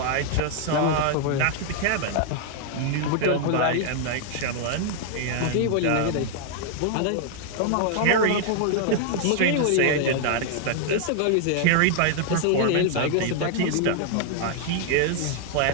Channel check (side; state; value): both; different; correlation 0.00